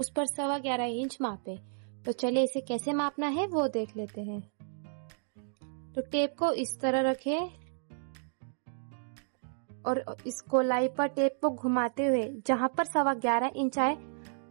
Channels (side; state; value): left; silent; digital silence